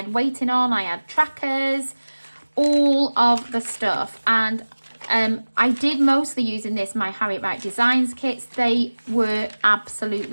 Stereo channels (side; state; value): both; inverted; correlation -1.00